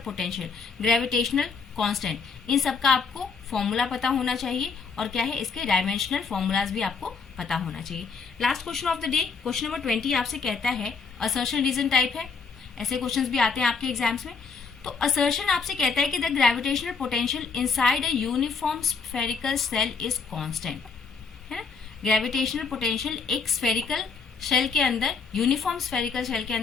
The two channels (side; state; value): right; quieter; 5.2 dB